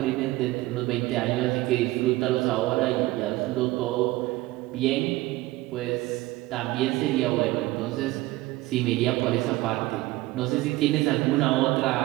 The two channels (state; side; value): quieter; left; 18.7 dB